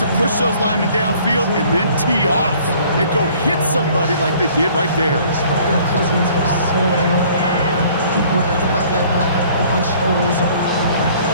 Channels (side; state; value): both; inverted; correlation -0.55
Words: push those linemen downfield and then tee off and go hit somebody like they did right there.